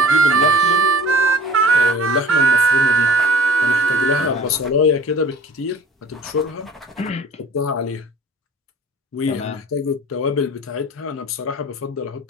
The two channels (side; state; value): both; normal; correlation 0.45